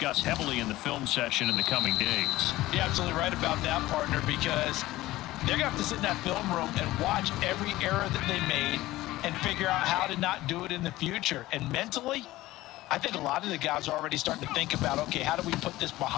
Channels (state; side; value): quieter; right; 17.1 dB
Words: heavily in the film session in the coming days. You're absolutely right about that, partner, because they're going to have to sit in that film room and watch every error that they made and figure out how to not do it in the future. And mentally, I think a lot of the guys are already starting to think about, okay, how do we put this